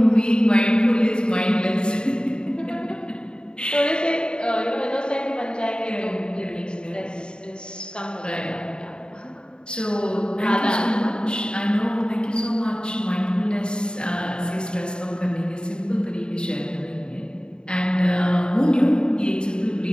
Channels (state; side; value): late; right; 0.049 ms